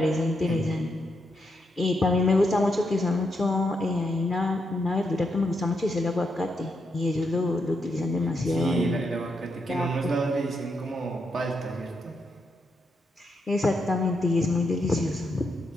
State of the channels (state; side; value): normal; both; correlation 0.81